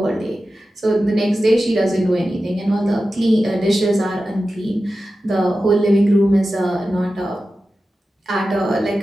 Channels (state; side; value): normal; both; correlation 0.93